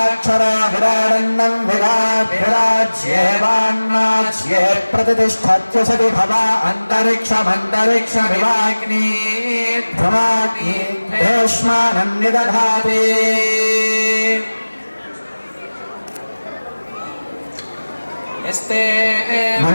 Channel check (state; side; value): inverted; both; correlation -1.00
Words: विराग्भिराज्येवान्नाज्ये प्रतिष्ठत्यसति भवा अन्तरिक्षमन्तरिक्षमिवाग्नि भ्रमाग्नि भीष्मानं निदधाति यस्ते